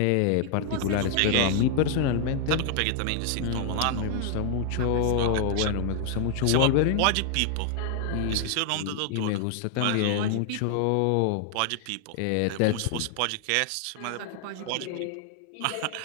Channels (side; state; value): both; different; correlation 0.00